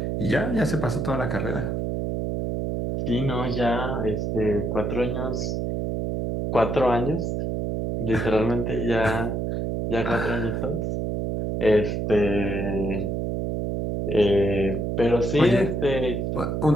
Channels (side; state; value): right; noise; hum, 1 dB below the sound